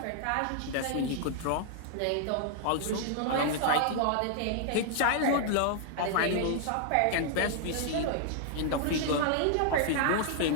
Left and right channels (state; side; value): different; both; correlation -0.01